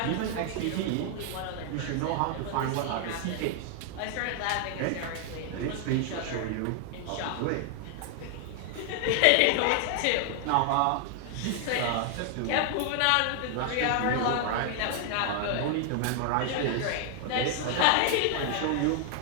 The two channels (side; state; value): both; different; correlation 0.00